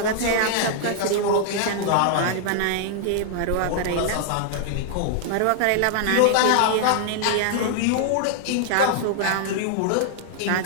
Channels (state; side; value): different; both; correlation 0.00